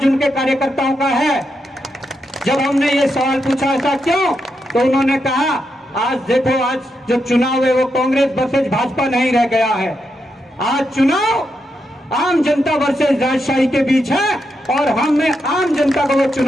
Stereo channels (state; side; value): normal; both; correlation 0.84